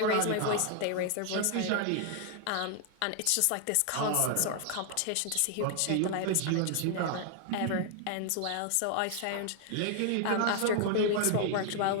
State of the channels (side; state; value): both; different; correlation 0.00